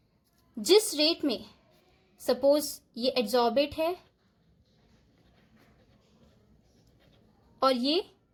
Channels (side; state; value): both; identical; correlation 1.00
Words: जिस रेट में, सपोज ये एड्सॉर्बेट है और ये